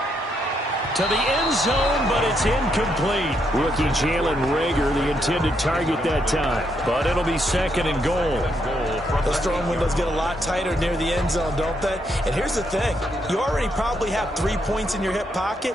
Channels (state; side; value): normal; both; correlation 0.77